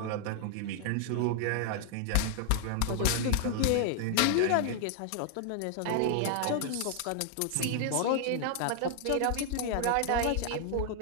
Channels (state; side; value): different; both; correlation 0.00